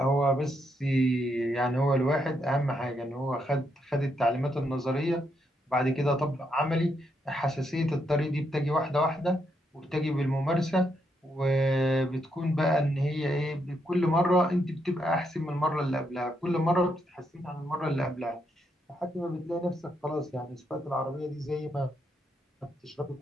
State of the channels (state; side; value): normal; both; correlation 0.78